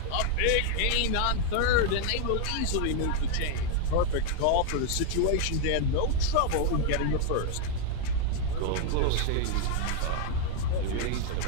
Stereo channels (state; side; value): different; both; correlation 0.00